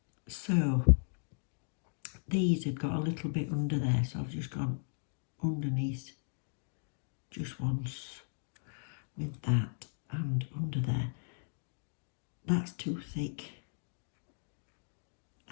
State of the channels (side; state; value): right; silent; digital silence